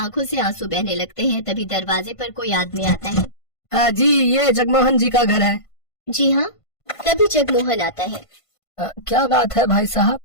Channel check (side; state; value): right; late; 1.5 ms